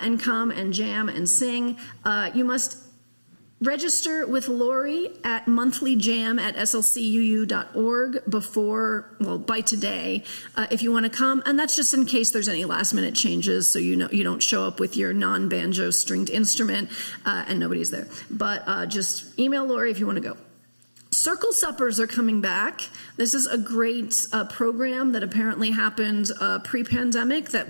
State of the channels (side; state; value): both; inverted; correlation -1.00